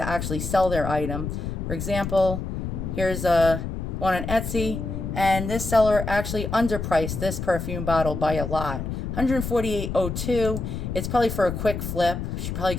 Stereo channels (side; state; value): left; noise; rumble, 4 dB below the sound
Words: actually sell their item. For example, here's one on Etsy. And this seller actually underpriced this perfume bottle by a lot, 148.02. It's probably for a quick flip. She probably